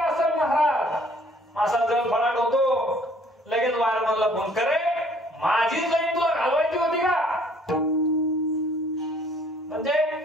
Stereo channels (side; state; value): both; normal; correlation 0.58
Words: महाराज, असा जर फळाट होतो. लगेच वायरमॅनला फोन करे, माझीच लाईट तुला घालवायची होती का? म्हणजे